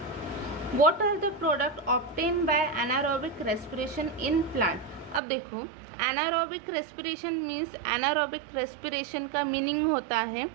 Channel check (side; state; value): left; drops out; at 5.2 s